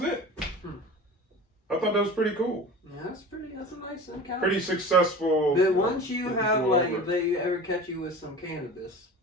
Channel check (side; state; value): both; normal; correlation 0.36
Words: it. I thought that was pretty cool. Yeah, that's a nice encounter. Pretty successful. But once you getting have, pulled like, over. if they ever catch you with some cannabis,